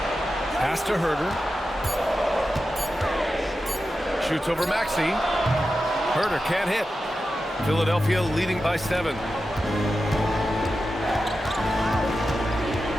Pass to Herter. Shoots over Maxey. Herter can't hit. Philadelphia leading by 7.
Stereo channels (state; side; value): normal; both; correlation 0.91